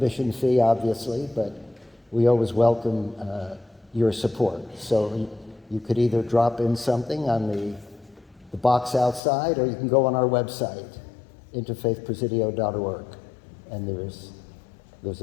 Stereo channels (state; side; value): drops out; right; at 9.2 s